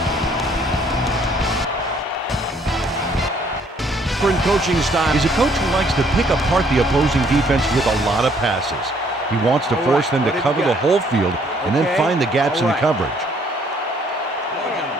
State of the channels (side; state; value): both; normal; correlation 0.64